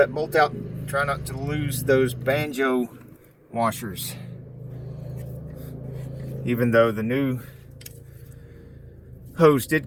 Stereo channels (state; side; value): identical; both; correlation 1.00